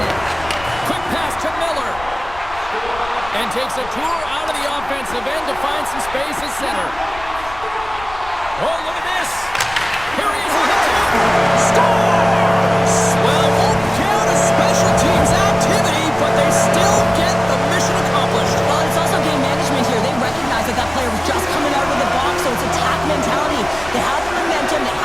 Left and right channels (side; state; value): left; noise; rumble, 17 dB below the sound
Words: Quick pass to Miller. And takes a tour out of the offensive end to find some space at center. Oh, look at this. Here he is. Scores! Well, won't count as special teams activity, but they still get the mission accomplished. Well, it's also game management here. They recognize that that player was just coming out of the box, so it's attack mentality. They had the momentum, they